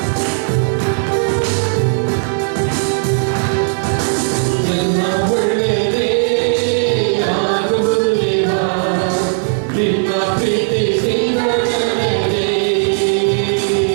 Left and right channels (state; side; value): silent; left; digital silence